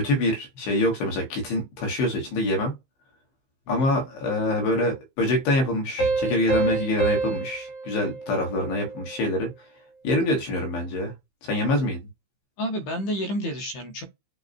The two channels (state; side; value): late; right; 15 ms